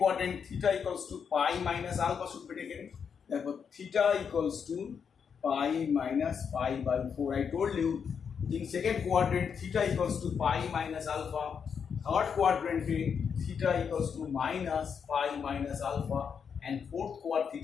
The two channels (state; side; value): quieter; right; 6.8 dB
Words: theta equals to pi minus alpha should be taken. Therefore, theta equals to pi minus pi by 4. I told you in second quadrant theta equals to pi minus alpha. Third quadrant theta equals to minus pi minus alpha, and fourth quadrant